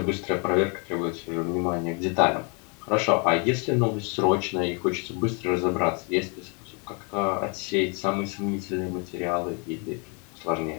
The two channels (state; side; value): quieter; right; 35.2 dB